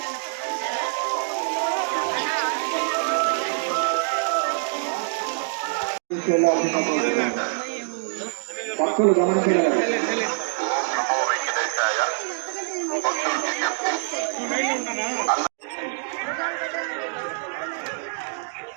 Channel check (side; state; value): left; silent; 62 dB below the other